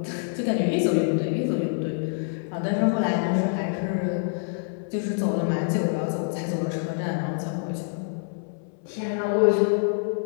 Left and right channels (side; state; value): right; silent; 61 dB below the other